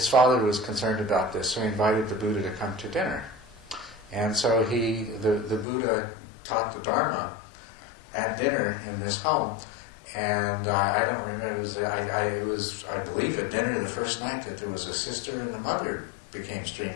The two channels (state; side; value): drops out; right; at 5.7 s